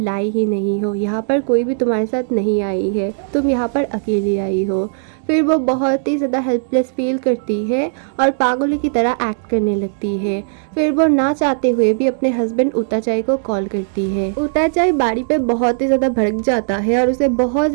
ही नहीं हो, यहाँ पर कोई भी तुम्हारे साथ नहीं आई है, तुम यहाँ पर अकेली आई हो। फिर वो बहुत ही ज़्यादा हेल्पलेस फील करती है और पागलों की तरह एक्ट करने लगती है। फिर वो ना चाहते हुए भी अपने हस्बैंड उताचाई को कॉल करती है। उताचाई बारी पे बहुत ही ज़्यादा भड़क जाता है और उसे बहुत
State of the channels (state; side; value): silent; left; digital silence